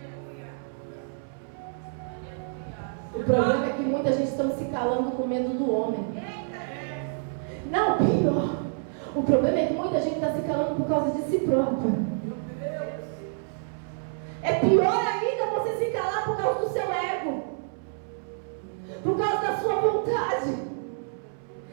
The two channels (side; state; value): left; silent; 59 dB below the other